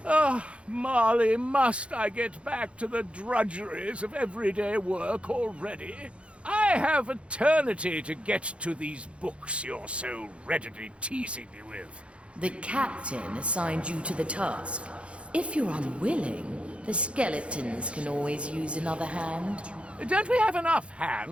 Ah, Marley, must I get back to the drudgeries of everyday work already? I have eternity to get to these books you're so readily teasing me with. The captain assigned you to the task. If you're unwilling, the skeletons can always use another hand. Don't we have enough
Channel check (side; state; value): left; late; 0.060 ms